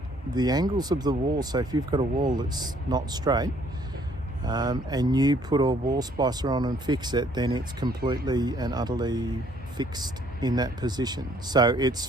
the angles of the wall, so if you've got a wall that's not straight, and you put a wall splicer on and fix it, then it's completely and utterly fixed in that position. So it's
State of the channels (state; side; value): normal; both; correlation 0.63